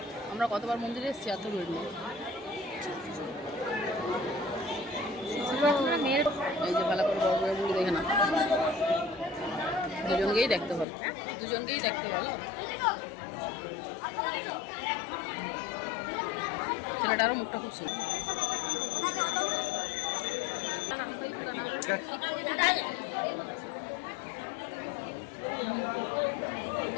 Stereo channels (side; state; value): right; drops out; at 10.9 s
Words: আমরা কতবার মন্দিরে এসেছি, এত ভিড় নেই। এই যে ভালো করে বড় বড় মুড়ি দেখে না, দুজনকেই দেখতে ভালো, দুজনকেই দেখতে ভালো। ছেলেটারও মুখটা খুব সুন্দর।